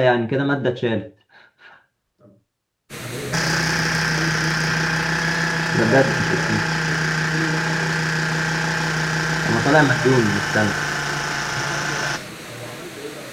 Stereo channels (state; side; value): identical; both; correlation 1.00